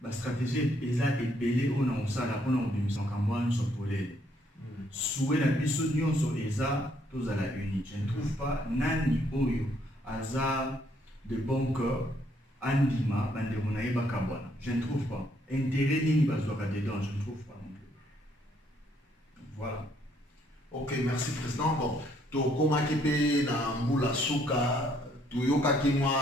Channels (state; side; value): normal; both; correlation 0.69